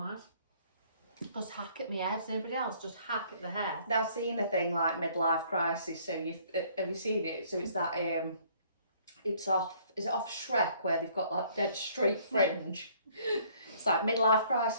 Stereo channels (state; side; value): inverted; both; correlation -0.60